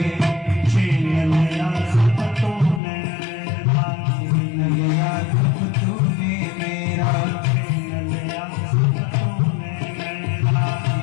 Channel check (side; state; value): right; drops out; at 2.8 s